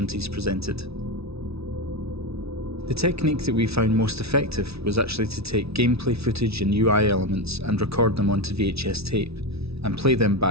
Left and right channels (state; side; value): late; left; 0.78 ms